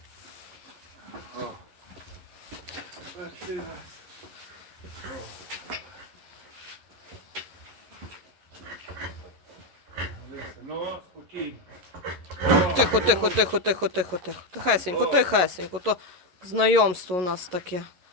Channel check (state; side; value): late; left; 11 ms